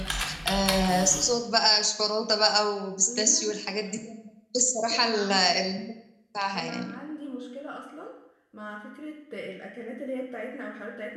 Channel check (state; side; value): identical; both; correlation 1.00